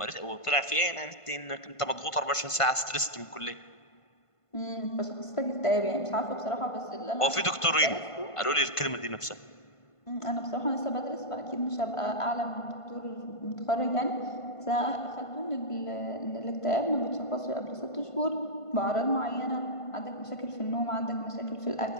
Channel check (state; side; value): late; right; 1.5 ms